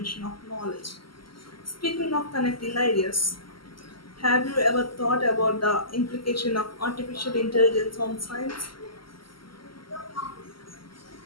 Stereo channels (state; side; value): late; right; 0.73 ms